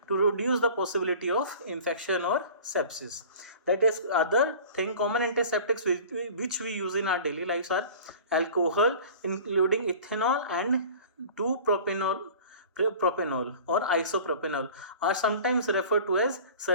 to reduce the possibility of infection or sepsis. That is, other thing, common antiseptics which we use in our daily lives are alcohol, including ethanol and 2-propanol or isopropanol, are sometimes referred to as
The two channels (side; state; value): both; inverted; correlation -0.41